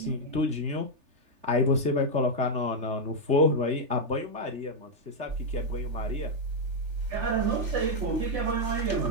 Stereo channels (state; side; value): late; left; 3.4 ms